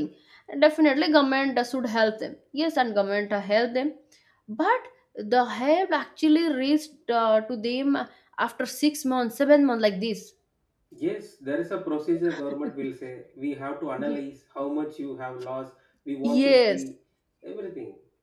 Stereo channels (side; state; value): both; identical; correlation 1.00